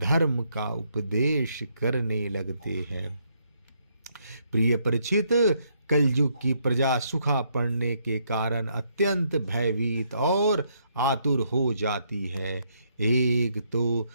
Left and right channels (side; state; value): both; inverted; correlation -0.73